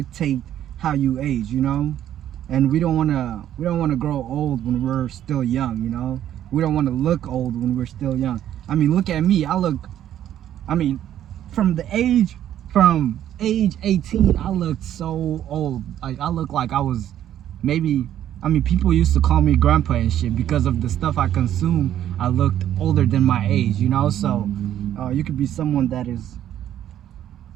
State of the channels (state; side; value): quieter; left; 11.2 dB